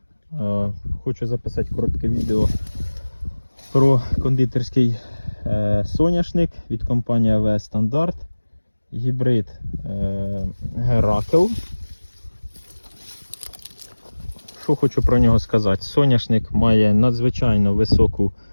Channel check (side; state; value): both; inverted; correlation -1.00